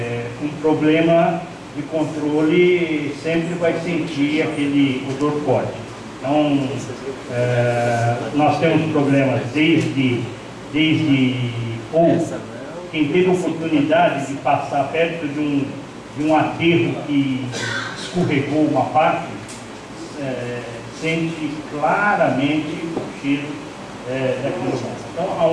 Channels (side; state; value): both; identical; correlation 1.00